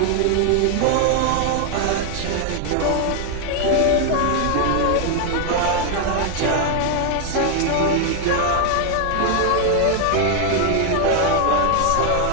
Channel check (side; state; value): both; different; correlation 0.00